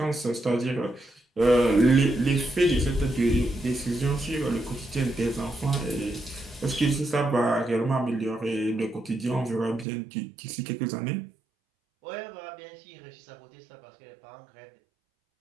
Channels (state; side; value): drops out; left; at 9.9 s